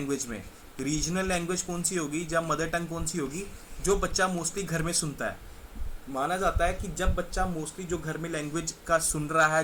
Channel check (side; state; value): both; identical; correlation 1.00